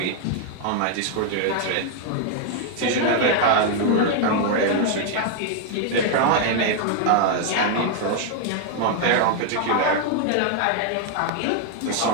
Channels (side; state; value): both; different; correlation 0.00